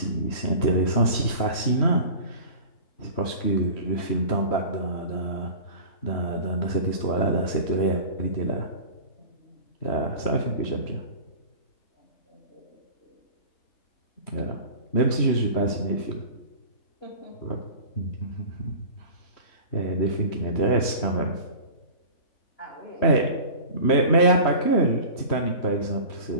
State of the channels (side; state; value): right; late; 3.1 ms